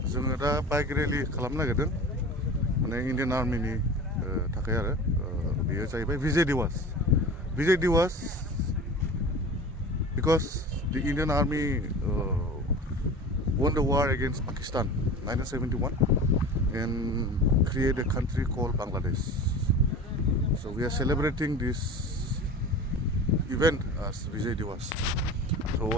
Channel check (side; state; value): both; normal; correlation 0.35